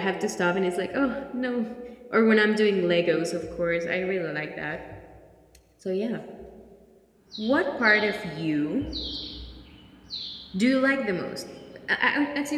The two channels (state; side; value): identical; both; correlation 1.00